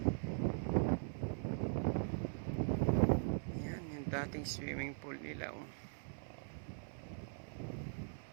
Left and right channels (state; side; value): silent; left; 50 dB below the other